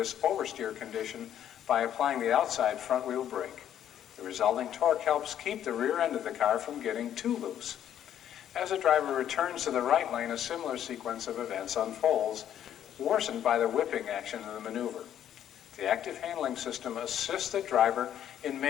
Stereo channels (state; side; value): quieter; right; 10.4 dB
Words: oversteer condition by applying the outside front wheel brake. The resulting torque helps keep the rear end of the car from getting too loose. As the driver returns to the right lane, a similar sequence of events unfolds, worsened by the whipping action of the maneuver. The active handling system assists the driver in